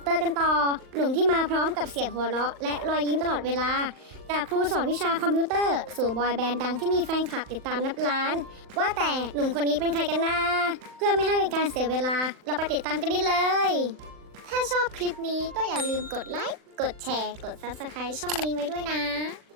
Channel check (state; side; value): late; left; 40 ms